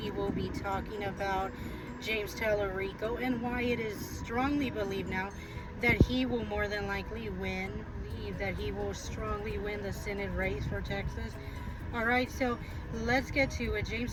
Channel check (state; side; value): identical; both; correlation 1.00